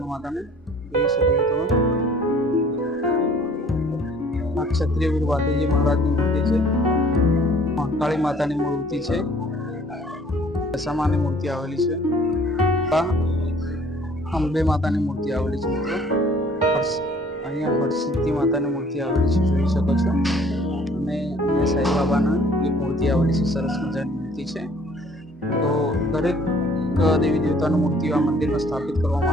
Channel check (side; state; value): both; normal; correlation 0.55